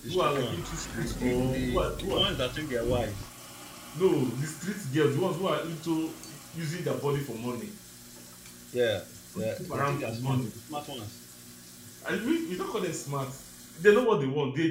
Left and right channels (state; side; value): identical; both; correlation 1.00